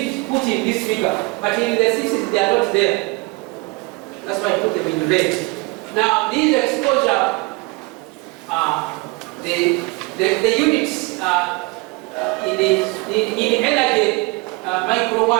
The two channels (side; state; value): left; quieter; 25.5 dB